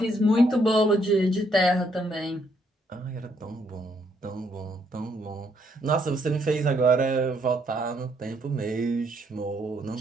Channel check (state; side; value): normal; both; correlation 0.71